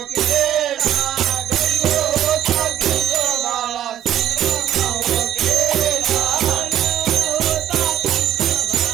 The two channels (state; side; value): quieter; left; 11.3 dB